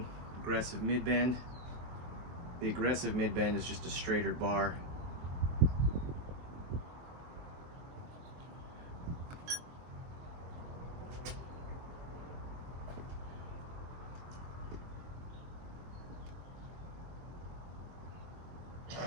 aggressive mid-bend. The aggressive mid-bend is just a straighter bar.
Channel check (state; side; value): late; left; 23 ms